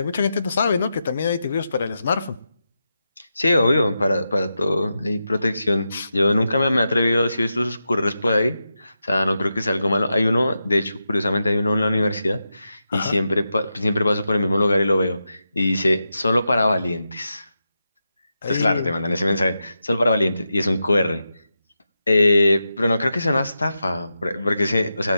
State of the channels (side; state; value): both; inverted; correlation -0.89